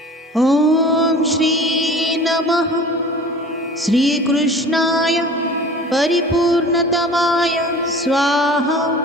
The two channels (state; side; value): normal; both; correlation 0.42